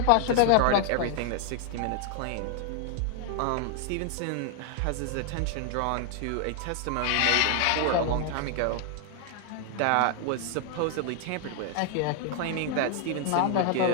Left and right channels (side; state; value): both; different; correlation 0.00